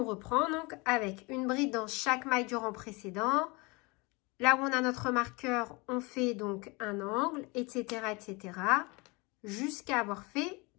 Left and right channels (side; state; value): right; quieter; 26.7 dB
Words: reprend donc avec une bride dans chaque maille du rang précédent. Là où on a notre marqueur, on fait donc un angle, etc., etc., jusqu'à avoir fait